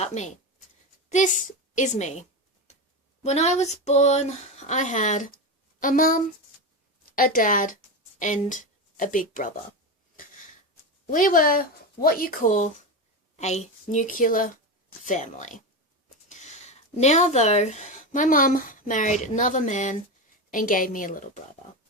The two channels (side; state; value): both; normal; correlation 0.18